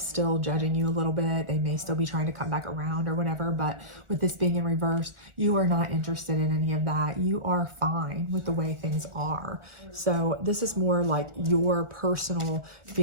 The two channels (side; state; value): left; late; 1.4 ms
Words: judging you a little bit. They may still be trying to come back around or whatever, but with this being in reverse, you are not interested in any of that. You are fine with the way things are. So this is more like your personal